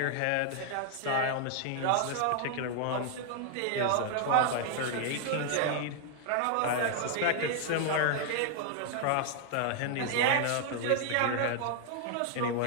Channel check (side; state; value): both; different; correlation -0.01